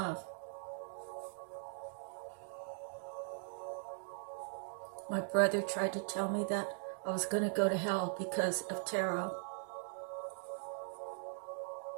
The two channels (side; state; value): left; silent; digital silence